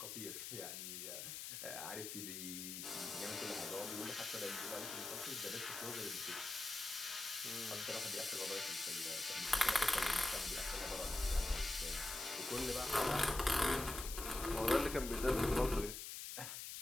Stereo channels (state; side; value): noise; left; hiss, 6 dB below the sound